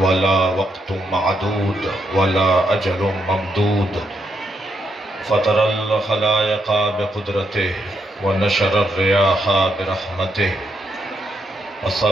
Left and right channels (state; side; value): normal; both; correlation 0.79